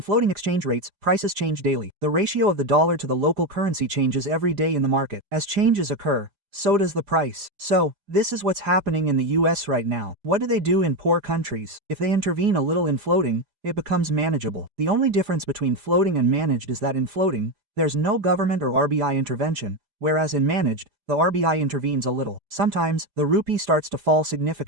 floating exchange rates, prices change daily. The ratio of the dollar to the local currency changes every day in the market. As changes occur, so does the price. So, this is what's happening in the US right now. What do they do in poor countries? If they intervene a little in floating, it becomes manageable. The only difference between floating and managed is that in floating, there's no government or RBI intervention, whereas in managed, the RBI intervenes a little. Sometimes, the rupee starts to fall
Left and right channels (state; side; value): late; left; 4.9 ms